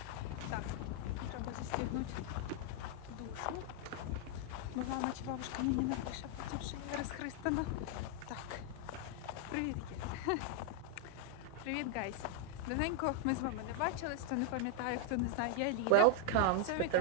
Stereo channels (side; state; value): both; different; correlation 0.00